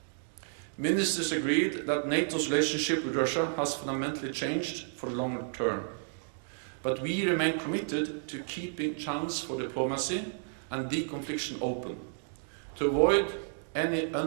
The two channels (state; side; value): silent; left; digital silence